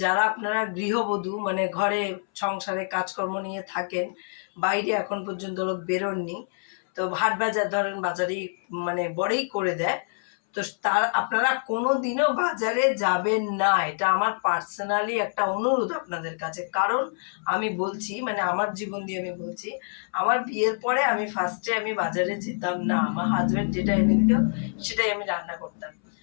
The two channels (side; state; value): right; silent; 61 dB below the other